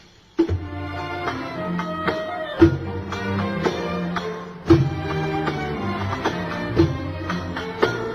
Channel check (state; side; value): identical; both; correlation 1.00